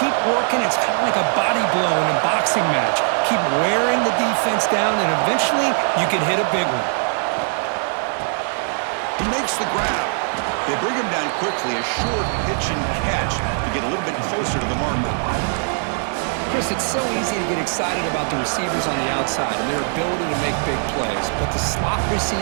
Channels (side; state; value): left; silent; 57 dB below the other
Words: working. It's kind of like a body blow in a boxing match. Keep wearing the defense down, and eventually you can hit a big one. He makes the grab. They bring him down quickly. A short pitch and catch to get a little bit closer to the marker. Chris, it's so easy to get excited about the receivers on the outside and their ability to make big plays, but the slot